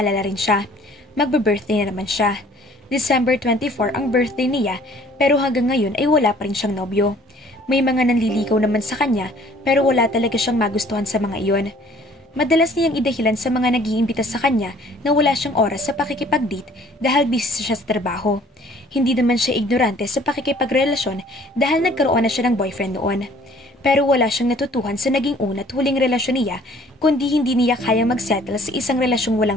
rin siya. Magbe-birthday na naman siya. December 24 ang birthday niya, pero hanggang ngayon ay wala pa rin siyang nobyo. May mga nanliligaw naman sa kanya, pero wala talaga siyang magustuhan sa mga iyon. Madalas niyang idahilan sa mga nag-iimbita sa kanya na wala siyang oras sa pakikipag-date dahil busy siya sa trabaho. Hindi naman siya ignorante sa pakikipagrelasyon dahil nagkaroon na siya ng boyfriend noon. Pero wala siyang natutuhan sa naging una at huling relasyon niya kundi hindi niya kayang magsettle sa isang relasyong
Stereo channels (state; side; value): normal; both; correlation 0.55